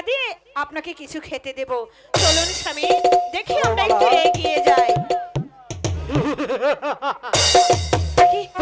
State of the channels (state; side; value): identical; both; correlation 1.00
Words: দিয়ে আপনাকে কিছু খেতে দেব। চলুন স্বামী, দেখি আমরা একটু এগিয়ে যাই।